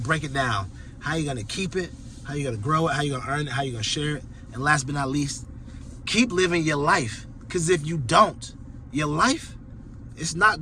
break it down. how you gonna keep it, how you gonna grow it, how you gonna earn it, how you gonna share it. And last but not least, keep living your life. Because if you don't, your life, it's not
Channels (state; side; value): identical; both; correlation 1.00